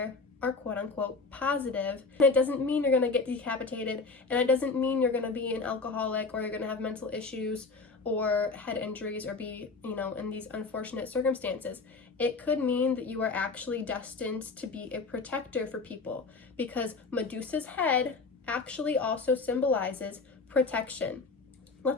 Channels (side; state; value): right; quieter; 4.1 dB